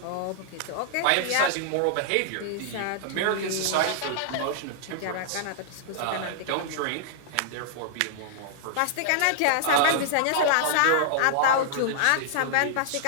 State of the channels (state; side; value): different; both; correlation -0.01